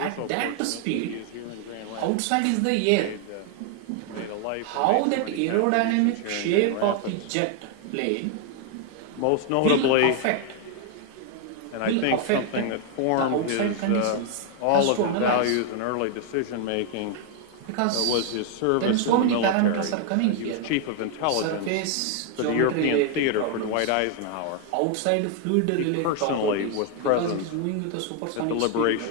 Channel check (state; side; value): different; both; correlation 0.00